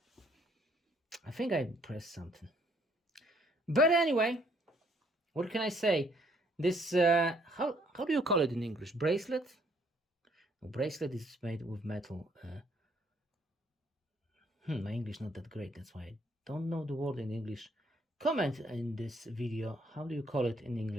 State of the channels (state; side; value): normal; both; correlation 0.66